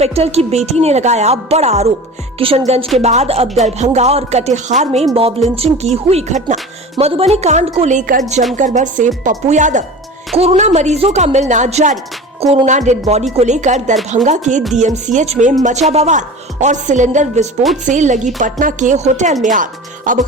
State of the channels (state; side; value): normal; both; correlation 0.35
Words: की बेटी ने लगाया बड़ा आरोप। किशनगंज के बाद अब दरभंगा और कटिहार में मॉब लिंचिंग की हुई घटना। मधुबनी कांड को लेकर जमकर बरसे पप्पू यादव। कोरोना मरीजों का मिलना जारी। कोरोना डेड बॉडी को लेकर दरभंगा के डीएमसीएच में मचा बवाल और सिलेंडर विस्फोट से लगी पटना के होटल में आग। अब